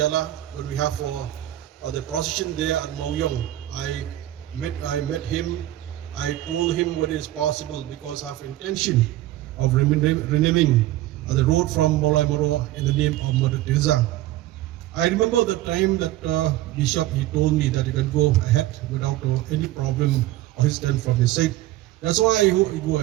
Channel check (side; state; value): left; quieter; 15.2 dB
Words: when we have for the procession there at Mauyong. I met him. I told him what is possible because I have intention of renaming the road from Molai Moro in the name of Mother Teresa. I remember the time that Bishop, he told me that he can go ahead without any problem or his stand from his side. That's why I go